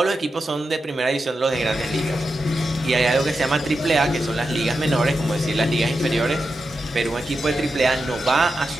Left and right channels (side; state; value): both; normal; correlation 0.89